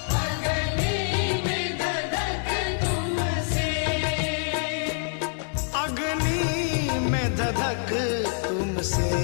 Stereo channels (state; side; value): silent; right; digital silence